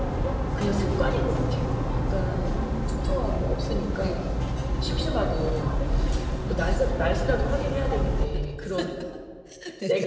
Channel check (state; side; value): identical; both; correlation 1.00